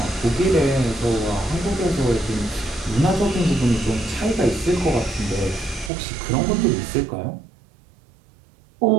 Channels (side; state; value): left; drops out; at 5.9 s